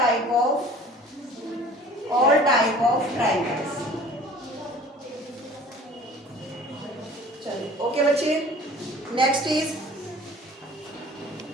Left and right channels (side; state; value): both; normal; correlation 0.47